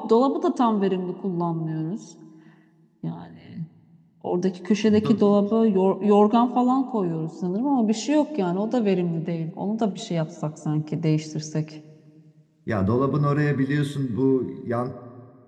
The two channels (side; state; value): both; identical; correlation 1.00